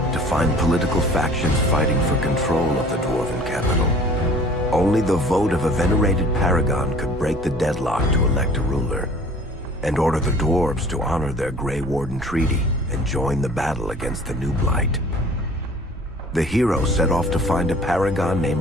to find political factions fighting for control of the dwarven capital. Only the vote of a venerated paragon could break the deadlock to elect a ruler, and order the dwarves to honor their Grey Warden treaty and join the battle against the new blight. The hero set off to find a paragon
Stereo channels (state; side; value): normal; both; correlation 0.49